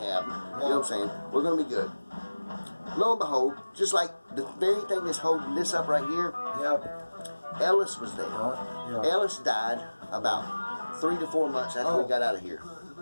You know what I'm saying? We're going to be good." Lo and behold, just like the very thing that's holding this up right here, Ellis was there. Ellis died about 3 to 4 months after we got out of here.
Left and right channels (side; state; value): both; inverted; correlation -1.00